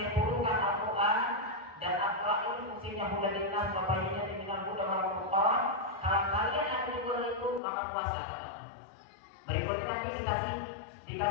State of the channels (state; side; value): drops out; right; at 7.6 s